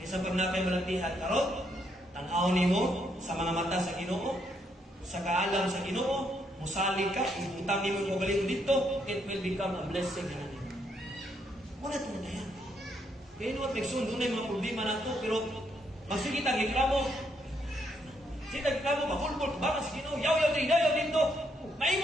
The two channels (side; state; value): both; normal; correlation 0.75